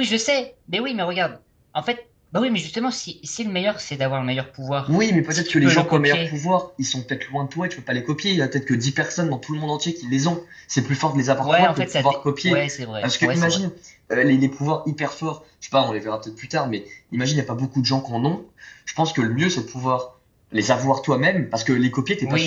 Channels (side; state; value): both; identical; correlation 1.00